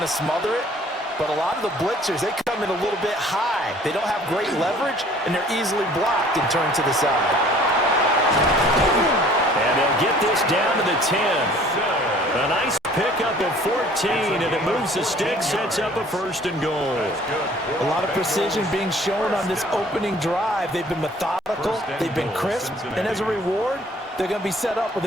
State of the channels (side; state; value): both; normal; correlation 0.53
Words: to smother it. But a lot of the blitzers, they come in a little bit high. They don't have great leverage, and they're easily blocked and turned to the side. And they'll get this down to the 10. A nice pickup of 14, and it moves the stick, sets up a 1st and goal. A lot of precision being shown on this opening drive. They've been methodical, they've been crisp, and as a reward, they're going to be set up with